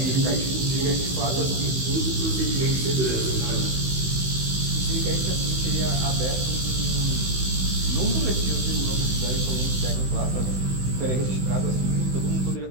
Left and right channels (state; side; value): late; left; 16 ms